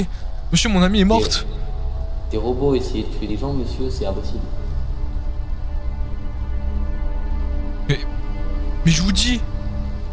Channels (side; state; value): both; identical; correlation 1.00